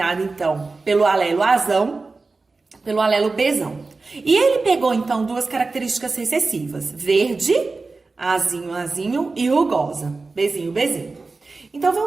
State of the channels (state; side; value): quieter; left; 3.8 dB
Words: então, pelo alelo Azão, pelo alelo Bzão. E ele pegou, então, duas características recessivas, verde, Azinho, Azinho e rugosa, Bzinho, Bzinho. Então,